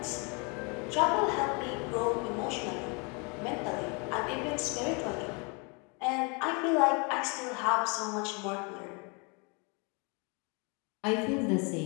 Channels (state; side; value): quieter; right; 32.6 dB